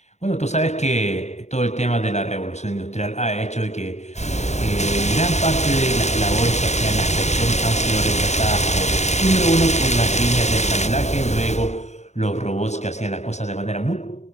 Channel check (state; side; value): late; right; 0.33 ms